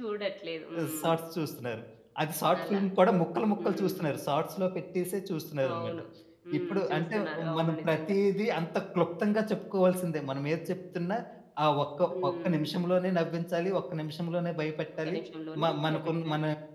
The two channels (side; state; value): both; identical; correlation 1.00